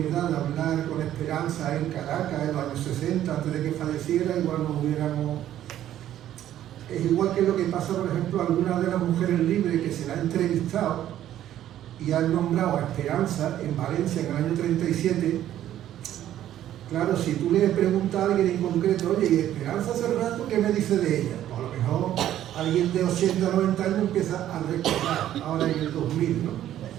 de hablar con Esperanza en Caracas en los años 60, antes de que falleciera, igual nos hubiéramos... Es igual que lo que pasa, por ejemplo, a algunas de las mujeres libres que se la han entrevistado y han nombrado a Esperanza en Valencia en el año 37. Claro, si tú le preguntas a alguien en concreto, oye, ¿y Esperanza hace rato qué me dice de ella? Pues a lo mejor alguien de 80 o 90 años empieza a recordar, ahora en el 2000, ¿no?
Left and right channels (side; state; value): left; quieter; 12.0 dB